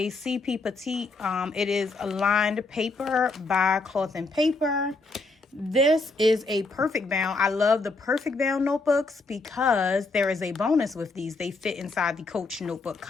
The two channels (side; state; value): right; quieter; 3.6 dB